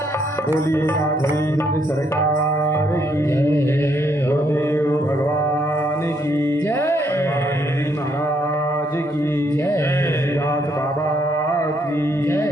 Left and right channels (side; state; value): both; normal; correlation 0.72